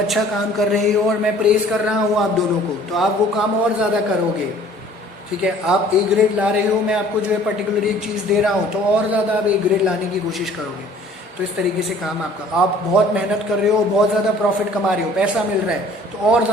काम कर रहे हो और मैं प्रेस कर रहा हूँ आप दोनों को, तो आप वो काम और ज़्यादा करोगे. ठीक है, आप ए ग्रेड ला रहे हो, मैं आपको जो है पर्टिकुलर एक चीज़ दे रहा हूँ, तो और ज़्यादा आप ए ग्रेड लाने की कोशिश करोगे. तो इस तरीके से काम आपका, आप बहुत मेहनत कर रहे हो, बहुत ज़्यादा प्रॉफिट कमा रहे हो, पैसा मिल रहा है, तो और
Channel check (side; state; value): both; normal; correlation 0.53